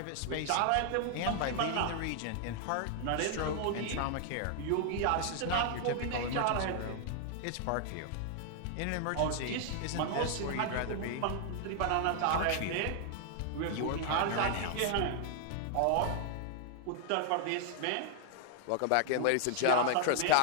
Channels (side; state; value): both; different; correlation 0.00